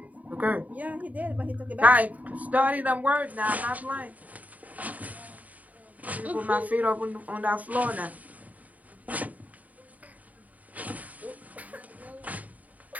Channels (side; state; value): left; late; 0.073 ms